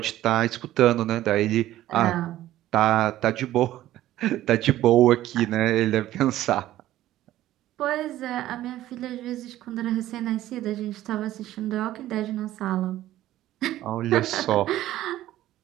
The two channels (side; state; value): left; quieter; 14.2 dB